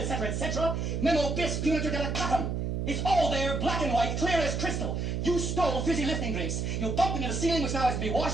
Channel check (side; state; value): right; noise; hum, 1 dB below the sound